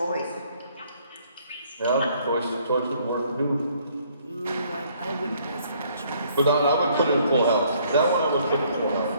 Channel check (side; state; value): both; inverted; correlation -0.64